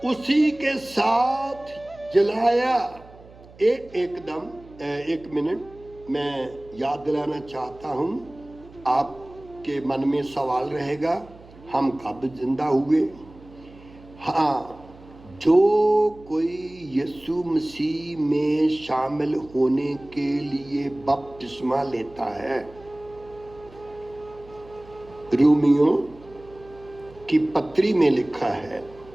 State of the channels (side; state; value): right; noise; hum, 22 dB below the sound